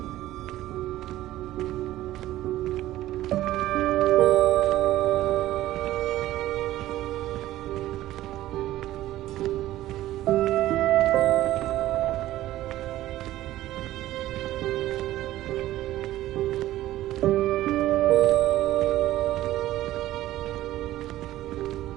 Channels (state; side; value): quieter; left; 14.8 dB